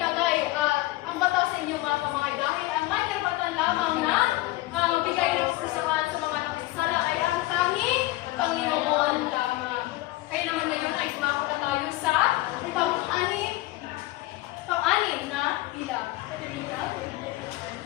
ang bataw sa inyong mga kamay dahil ang may karapatan lamang na magbigay ng kasasahan sa mga napinsala ay ang tanging Panginoon lamang. Kaya naman ngayon ay tumako na tayo sa pang-anim na bilang.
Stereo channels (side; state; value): right; quieter; 18.4 dB